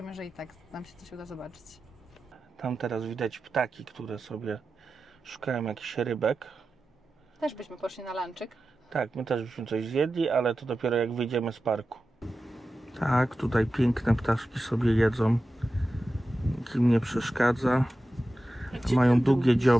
że i tak nam się coś uda zobaczyć. Tam teraz widać ptaki, które sobie szukają jakichś rybek. Też byśmy poszli na lunchik. Tak, my też byśmy coś zjedli, ale to dopiero jak wyjdziemy z parku. Tak, tutaj piękne ptaszki sobie jedzą. Nikim nie przeszkadza. Mają długie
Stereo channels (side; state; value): both; normal; correlation 0.93